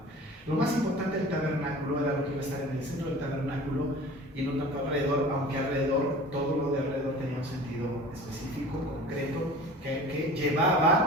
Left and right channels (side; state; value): both; normal; correlation 0.41